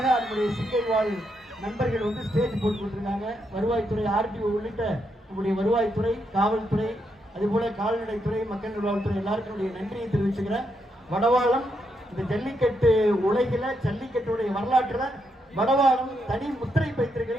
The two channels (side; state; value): both; normal; correlation 0.80